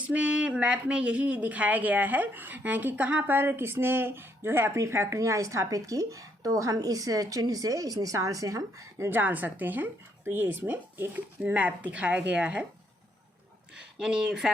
मैप में यही दिखाया गया है कि कहाँ पर किसने जो है अपनी फैक्ट्रियाँ स्थापित की। तो हम इस चिन्ह से, इस निशान से हम जान सकते हैं। तो ये इसमें एक मैप दिखाया गया है, यानी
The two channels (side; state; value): both; normal; correlation 0.72